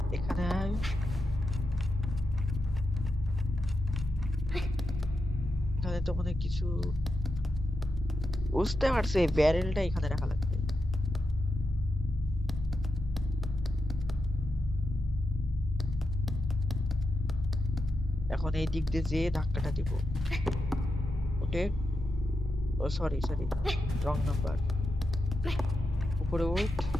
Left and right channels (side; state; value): both; normal; correlation 0.87